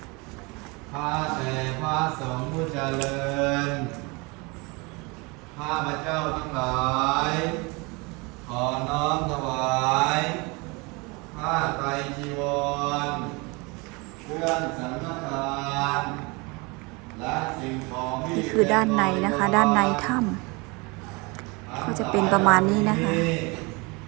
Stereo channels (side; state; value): left; quieter; 27.5 dB